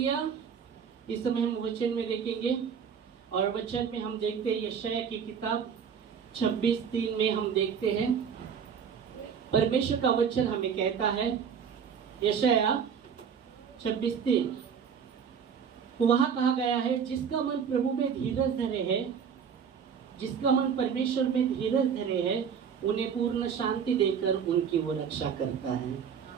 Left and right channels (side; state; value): left; quieter; 7.2 dB